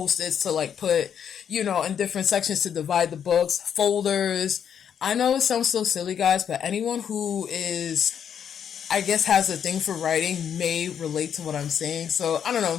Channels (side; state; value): right; quieter; 8.3 dB